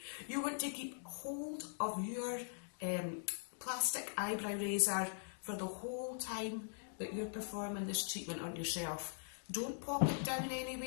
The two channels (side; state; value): right; silent; digital silence